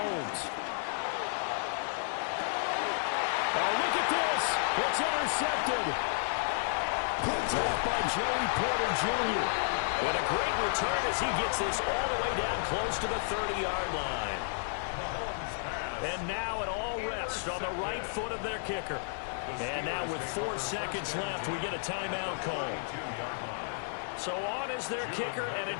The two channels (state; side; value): silent; right; 56 dB below the other